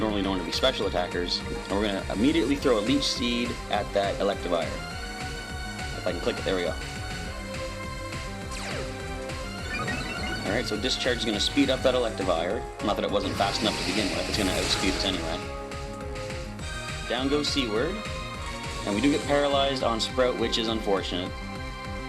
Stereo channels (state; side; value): identical; both; correlation 1.00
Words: known to be special attackers, and we're going to immediately throw a Leech Seed at that Electivire. If I can click it, there we go. Alright, so Discharge is going to speed up that Electivire. Not that it wasn't fast enough to begin with, it's going to outspeed us anyway. Down goes Seaward, and we do get paralyzed on Sprout, which is unfortunate.